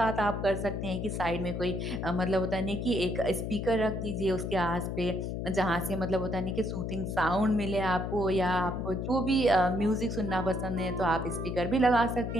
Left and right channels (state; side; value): noise; left; hum, 3 dB below the sound